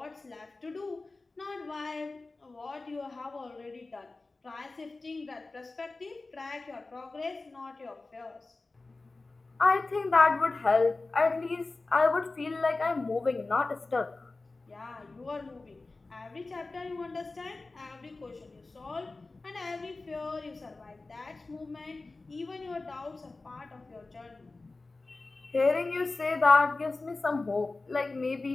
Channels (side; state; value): right; quieter; 3.4 dB